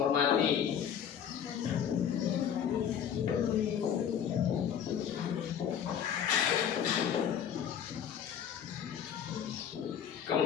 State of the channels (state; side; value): quieter; right; 8.7 dB